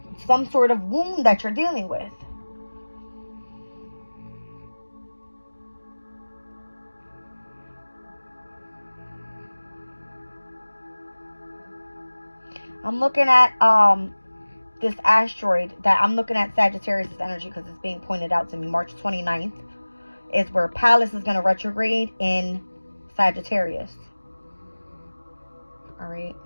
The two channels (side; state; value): both; inverted; correlation -1.00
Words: some sort of wound that you're dealing with. I'm looking at this asteroid that I'm looking at Sagittarius energy, because it's being pointed out to me. March 29th is where Pallas is going to retrograde in Sagittarius. All right.